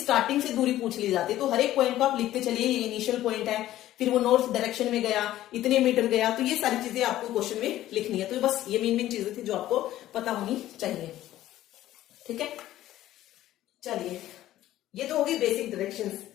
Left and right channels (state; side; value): quieter; right; 14.0 dB